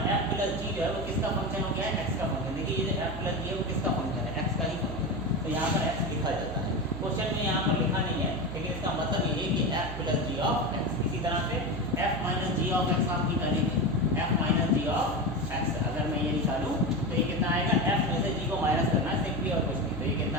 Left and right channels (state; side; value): noise; right; hum, 9 dB below the sound